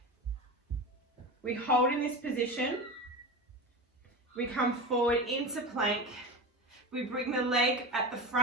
We hold in this position, we come forward into plank, we bring the leg at the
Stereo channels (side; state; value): both; normal; correlation 0.25